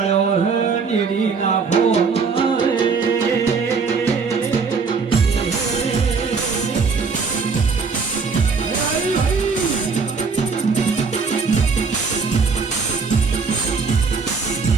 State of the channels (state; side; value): quieter; left; 5.0 dB